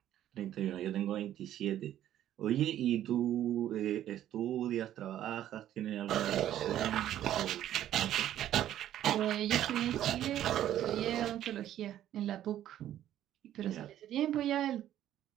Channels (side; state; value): left; quieter; 11.9 dB